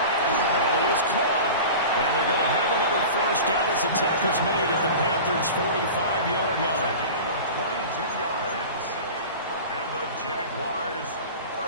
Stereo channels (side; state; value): both; inverted; correlation -0.34